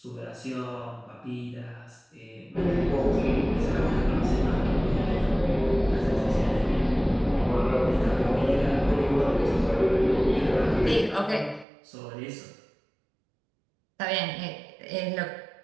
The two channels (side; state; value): left; drops out; at 11.7 s